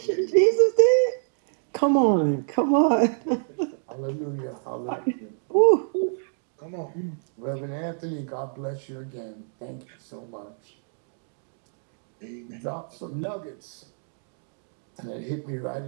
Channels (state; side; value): silent; left; digital silence